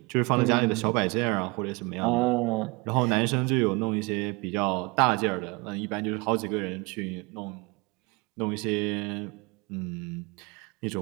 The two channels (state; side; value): quieter; left; 26.9 dB